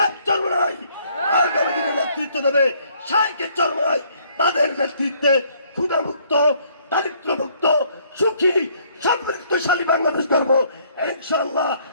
চরমনাই, আগামী দিনে নেতৃত্ব দেবে শাইখের চরমনাই। তাদের নেতৃত্বে ক্ষুধামুক্ত, দারিদ্র্যমুক্ত, সুখী, সমৃদ্ধশালী বাংলাদেশ গড়ব ইনশাআল্লাহ।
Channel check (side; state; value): both; inverted; correlation -0.64